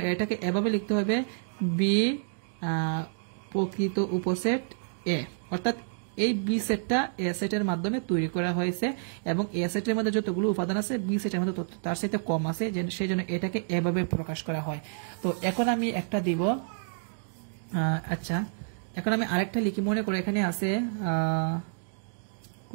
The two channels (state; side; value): silent; left; digital silence